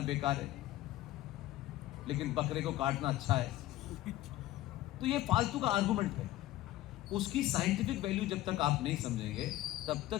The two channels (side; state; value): right; quieter; 15.3 dB